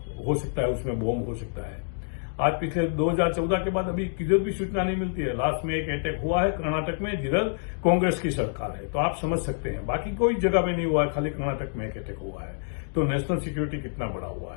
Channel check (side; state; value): right; silent; digital silence